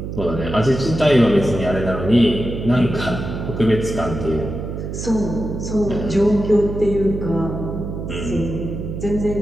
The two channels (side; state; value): right; noise; hum, 6 dB below the sound